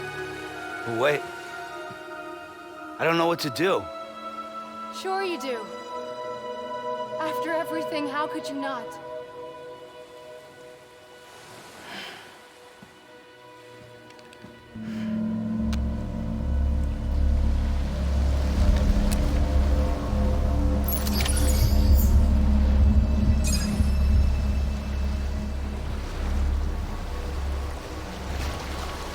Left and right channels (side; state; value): both; identical; correlation 1.00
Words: But wait. I don't know what to do. Sure you do. After everything, how could you not?